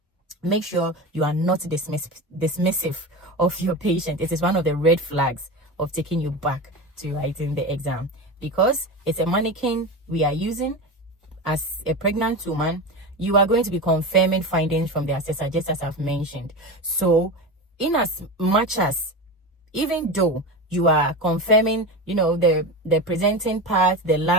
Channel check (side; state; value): both; normal; correlation 0.24